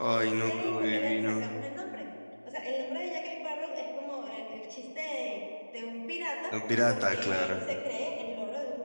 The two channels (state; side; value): inverted; both; correlation -1.00